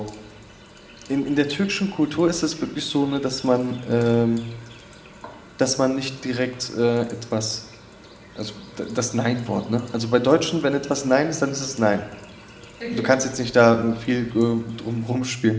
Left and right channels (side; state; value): both; identical; correlation 1.00